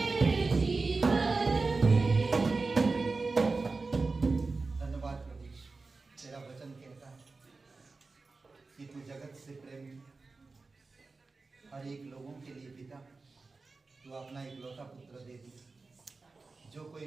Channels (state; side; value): quieter; left; 3.9 dB